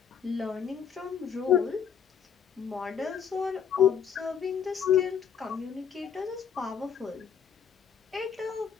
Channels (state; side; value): quieter; right; 7.6 dB